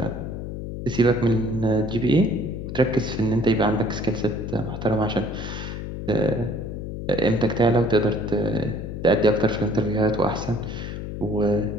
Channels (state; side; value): noise; left; hum, 7 dB below the sound